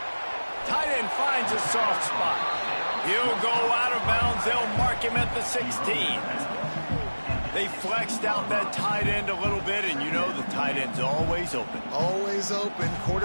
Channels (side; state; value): both; inverted; correlation -1.00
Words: Tight end finds a soft spot. He'll go out of bounds. They'll mark him at the 16. They flexed out that tight end a little bit, and you know the tight end's always open. Always open.